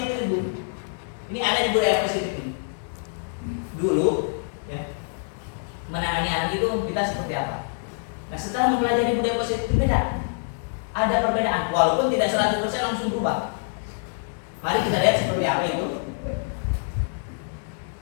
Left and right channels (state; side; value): silent; right; digital silence